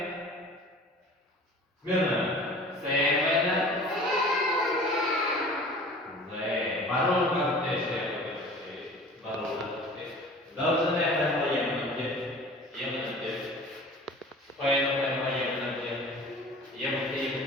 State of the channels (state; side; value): normal; both; correlation 0.43